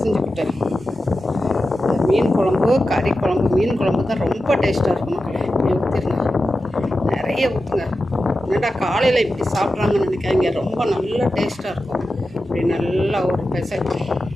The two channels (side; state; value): both; normal; correlation 0.92